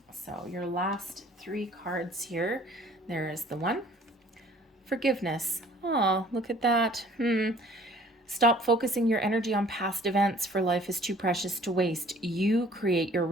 So your last three cards here. There is the one. Forgiveness. Oh, look at that. Stop focusing your energy on past events, for life is too precious to waste. You create your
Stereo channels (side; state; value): both; normal; correlation 0.54